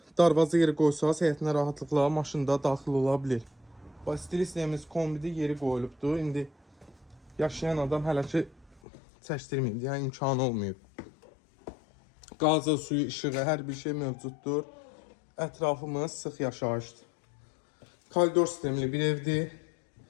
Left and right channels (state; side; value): drops out; right; at 8.8 s